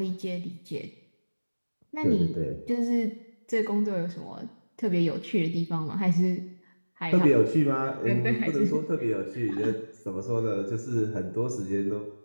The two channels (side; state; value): both; inverted; correlation -1.00